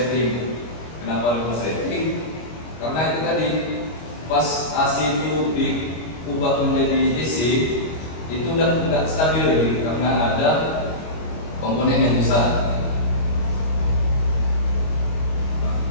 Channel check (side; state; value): right; late; 25 ms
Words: Kenapa ada konsleting? Karena itu tadi pas AC itu diubah menjadi DC, itu udah tidak stabil lagi karena ada komponen yang rusak. Nah,